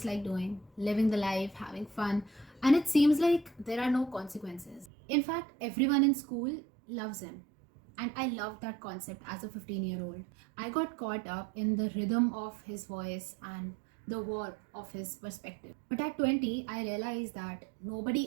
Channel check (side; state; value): left; drops out; at 4.9 s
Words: like doing, living the life, having fun, and it seems like there are no consequences. In fact, everyone in school loves him. And I loved that concept as a 15-year-old. I got caught up in the rhythm of his voice and the warmth of his perspective. But at 20, I realized that